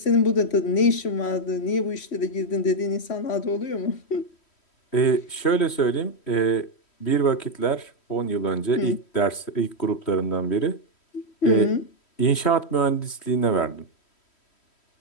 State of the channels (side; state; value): right; late; 3.1 ms